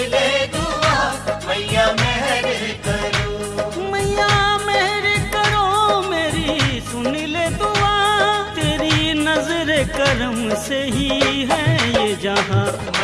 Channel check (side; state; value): both; identical; correlation 1.00